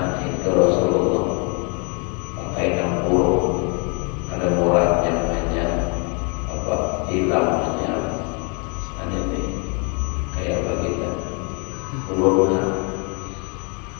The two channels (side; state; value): right; quieter; 35.1 dB